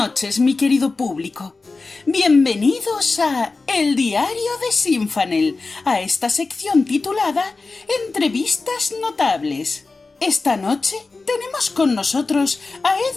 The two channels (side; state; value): right; quieter; 3.8 dB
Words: mi querido público. Bienvenidos a El Diario de Sinfanel, a esta sección titulada Entrevistas Notables. Esta noche tenemos con nosotros a